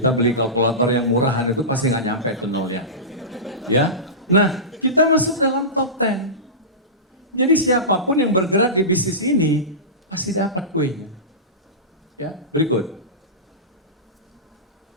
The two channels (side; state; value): both; normal; correlation -0.19